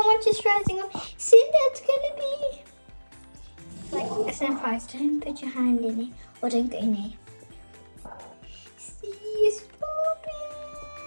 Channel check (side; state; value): both; inverted; correlation -1.00